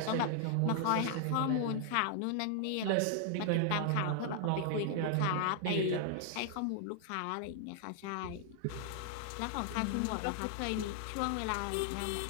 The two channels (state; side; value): different; both; correlation 0.00